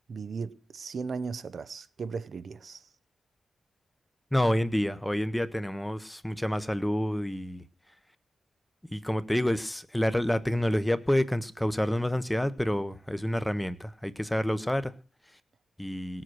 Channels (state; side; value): normal; both; correlation 0.98